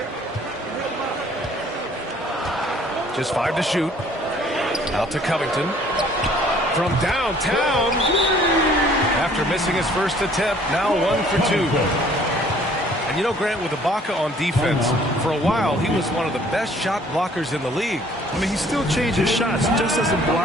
Just 5 to shoot. Out to Covington. From downtown. After missing his first attempt, now 1 for 2. And you know, Grant, with Ibaka on defense, for a while he was one of the best shot blockers in the league. I mean, he still changes shots, just doesn't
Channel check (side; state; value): both; normal; correlation 0.57